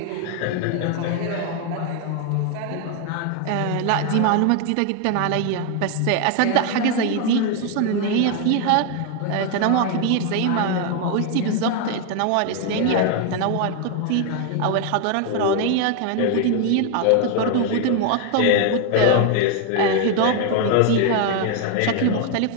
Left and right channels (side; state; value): both; different; correlation 0.00